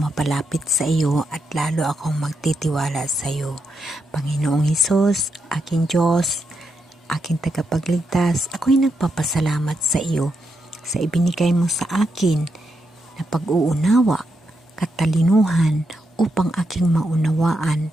mapalapit sa iyo at lalo akong magtitiwala sa iyo. Panginoong Hesus, aking Diyos, aking tagapagligtas, ako'y nagpapasalamat sa iyo sa ibinigay mo sa akin na pag-uunawa, katalinuhan upang aking maunawaan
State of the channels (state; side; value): normal; both; correlation 0.82